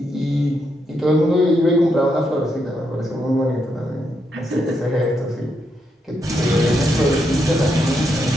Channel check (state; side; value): normal; both; correlation 0.80